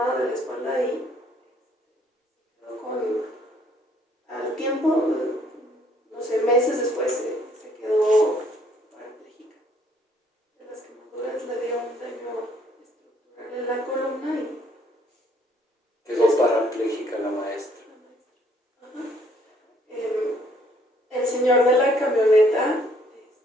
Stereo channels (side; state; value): both; normal; correlation 0.64